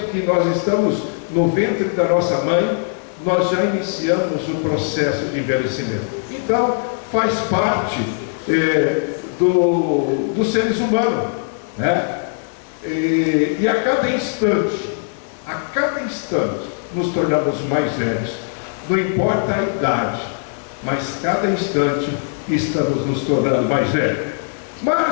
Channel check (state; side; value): silent; right; digital silence